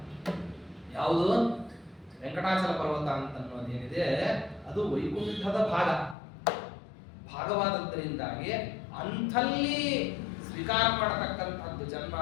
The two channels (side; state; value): right; drops out; at 6.2 s